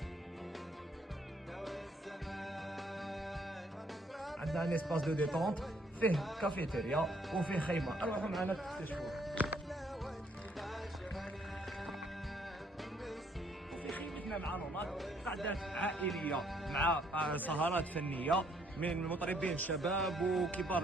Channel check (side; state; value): both; normal; correlation 0.67